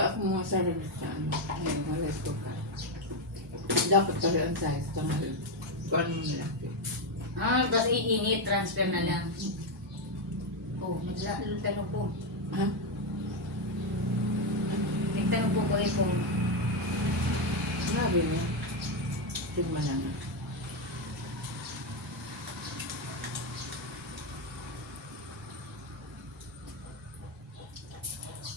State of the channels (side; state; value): both; normal; correlation 0.06